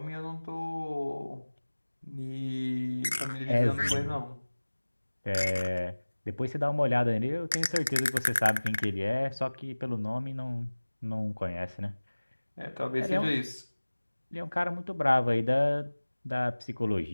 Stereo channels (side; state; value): both; inverted; correlation -1.00